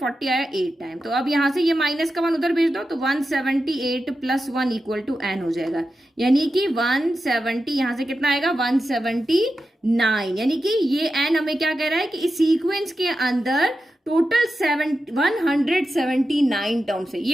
आया 8 टाइम, तो अब यहाँ से ये माइनस का 1 उधर भेज दो, तो 178 प्लस 1 इक्वल टू n हो जाएगा, यानी कि 170 यहाँ से कितना आएगा 179, यानी कि ये n हमें क्या कह रहा है कि इस सीक्वेंस के अंदर टोटल 179 टर्म्स है।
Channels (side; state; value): both; normal; correlation 0.91